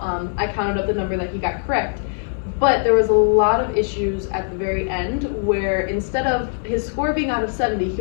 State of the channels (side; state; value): right; silent; digital silence